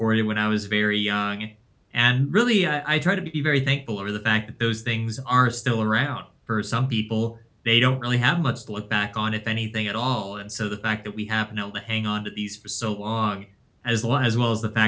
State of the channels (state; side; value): identical; both; correlation 1.00